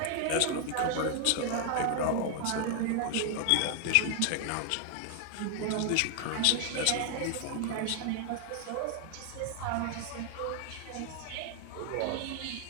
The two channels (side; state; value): both; different; correlation 0.00